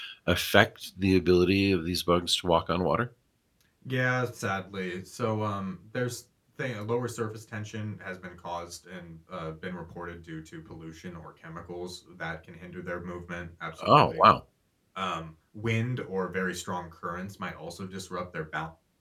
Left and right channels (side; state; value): both; identical; correlation 1.00